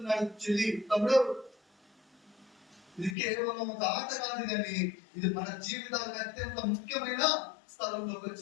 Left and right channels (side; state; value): right; drops out; at 3.2 s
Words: చెల్లి, తమ్ముడు, ఇది కేవలం ఒక ఆట కాదు కానీ ఇది మన జీవితాలకు అత్యంత ముఖ్యమైన స్థలంలోకి